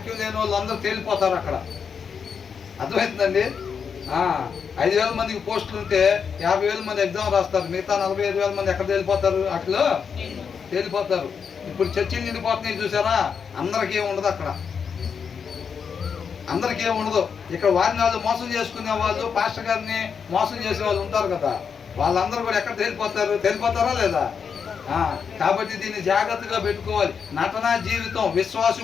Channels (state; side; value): quieter; right; 6.5 dB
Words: లేని వాళ్ళు అందరూ తేలిపోతారు అక్కడ. అర్థమవుతుందండి? 5,000 మందికి పోస్టులు ఉంటే 50,000 మంది ఎగ్జామ్ రాస్తారు. మిగతా 45,000 మంది ఎక్కడ తేలిపోతారు? అట్లా తేలిపోతారు. ఇప్పుడు చర్చిలు నిండిపోతున్నాయి చూసారా? అందరికీ ఉండదు అక్కడ, అందరికీ ఉండదు. ఇక్కడ వారిని వాళ్ళు మోసం చేసుకునే వాళ్ళు, పాస్టర్ గారిని మోసం చేసే వాళ్ళు ఉంటారు కదా, వాళ్ళందరూ కూడా ఎక్కడ తేలిపోతారు? తేలిపోతారా లేదా? కాబట్టి దీన్ని జాగ్రత్తగా పెట్టుకోవాలి. నటనా జీవితం